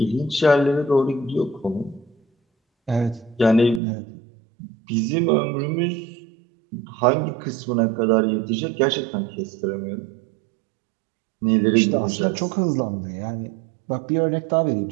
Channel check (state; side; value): drops out; left; at 3.8 s